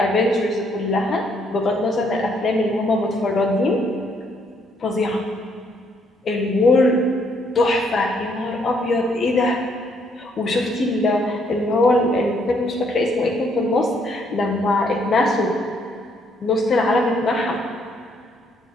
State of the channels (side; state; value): both; normal; correlation 0.70